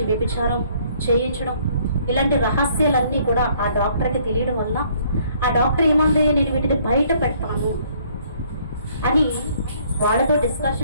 వ్యభిచారం చేయించడం, ఇలాంటి రహస్యాలన్నీ కూడా ఆ డాక్టర్కి తెలియడం వల్ల ఆ డాక్టర్ ఏమంది, నేను వీటిని బయట పెడతాను అని వాళ్ళతో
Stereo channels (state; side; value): inverted; both; correlation -0.63